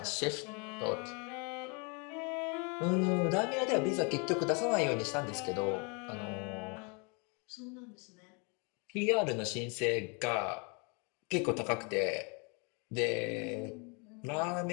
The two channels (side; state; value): right; quieter; 33.5 dB